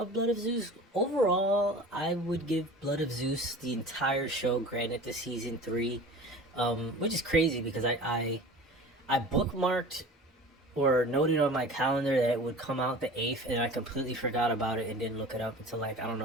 Blood of Zeus, overall, I would give Blood of Zeus the entire show, granted the season 3, which is crazy because I bookmarked or noted on my calendar that it would come out the 8th, and I completely forgot about it and didn't look it up until, like, I don't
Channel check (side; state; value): both; normal; correlation 0.39